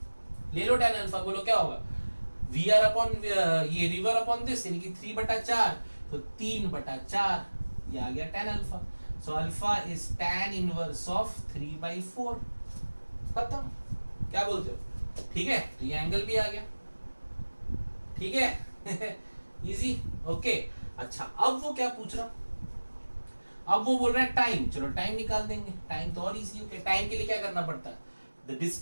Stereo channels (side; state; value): both; inverted; correlation -1.00